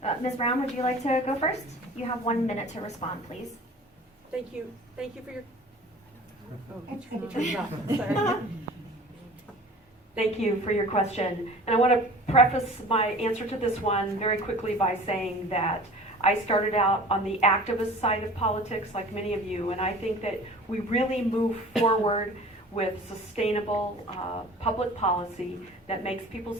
Ms. Brown, would you like to go first? You have 1 minute to respond, please. Thank you for your. Sorry. Thank you for your question. And I want to preface my answer to this one very quickly by saying that I started out on the activist side of politics like many of you, and I think that we really move forward with sustainable public policy that makes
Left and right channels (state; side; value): normal; both; correlation 0.43